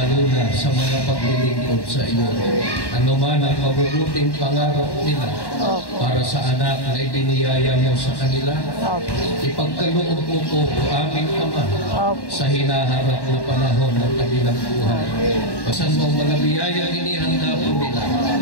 na sa mga paglilingkod sa iyo. Ano man ang mabubuting pangarap nila para sa anak na ibiniyaya mo sa kanila, ipagkaloob mo po o aming Ama sa hinaharap na panahon ng kanilang buhay. Basan mo mga biyayang inihanda po nila,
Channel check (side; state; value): right; late; 1.1 ms